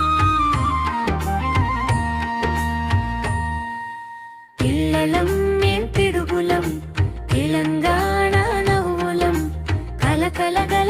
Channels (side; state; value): both; identical; correlation 1.00